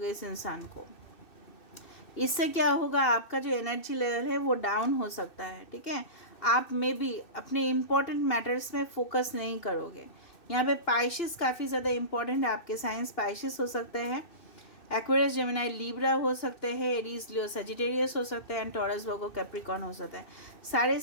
इस इंसान को, इससे क्या होगा, आपका जो एनर्जी लेवल है वो डाउन हो सकता है, ठीक है। आप में भी अपने इम्पोर्टेंट मैटर्स में फोकस नहीं करोगे। यहाँ पे पाइशिस काफ़ी ज़्यादा इम्पोर्टेंट है, आपके साइंस पाइशिस हो सकते हैं, एक्वेरियस, जेमिनाई, लीब्रा हो सकते हैं, एरीज, लियो, सजिटेरियस हो सकते हैं, एंड टॉरस, वर्गो, कैप्रिकॉर्न हो सकता है। सारे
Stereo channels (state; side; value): late; right; 2.6 ms